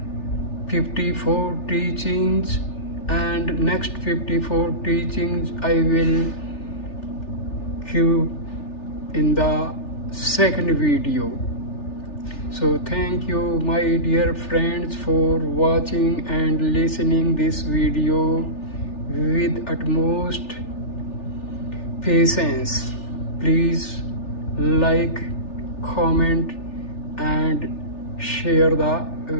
54 teachings, and next 54 teachings I will give in the second video. So thank you my dear friends for watching and listening this video with utmost patience. Please like, comment and share the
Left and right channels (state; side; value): late; right; 3.4 ms